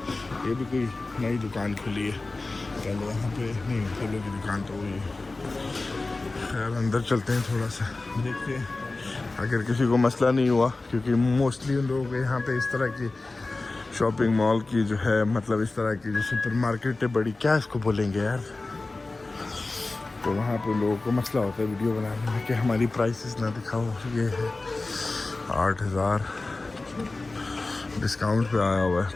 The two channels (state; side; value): quieter; right; 3.3 dB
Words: ये भी कोई नई दुकान खुली है, पहले यहाँ पे नहीं, फूलों की दुकान तो वही है। खैर अंदर चलते हैं, थोड़ा सा देखते हैं अगर किसी को मसला नहीं हुआ, क्योंकि मोस्टली उन लोगों के यहाँ पे इस तरह की शॉपिंग मॉल की जो है, मतलब इस तरह की जो सुपर मार्केट है बड़ी, क्या इसको बोलेंगे यार, तो वहाँ पे लोगों को मसला होता है वीडियो बनाने में कि हमारी प्राइसेस ना दिखाओ। ये है 8,000 डिस्काउंट पे आया हुआ है,